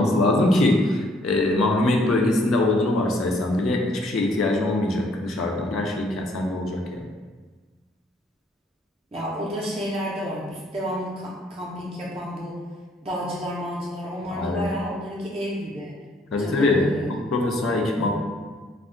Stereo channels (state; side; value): normal; both; correlation 0.65